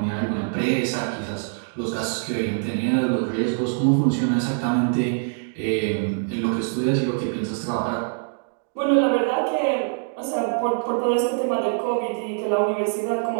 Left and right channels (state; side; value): silent; left; digital silence